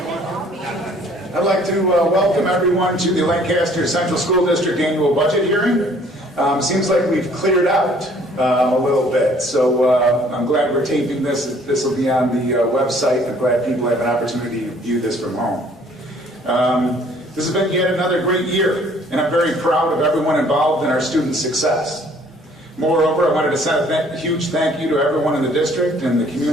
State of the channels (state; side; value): normal; both; correlation 0.58